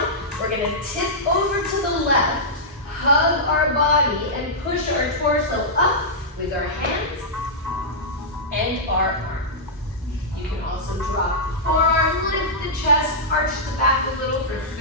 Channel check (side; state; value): both; normal; correlation -0.11